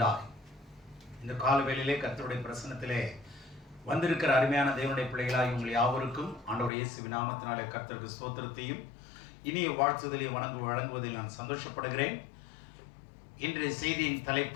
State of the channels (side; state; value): right; drops out; at 6.7 s